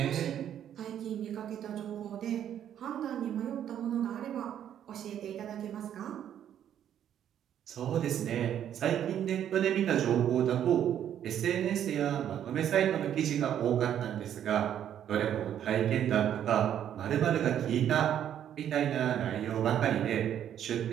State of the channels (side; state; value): left; quieter; 10.1 dB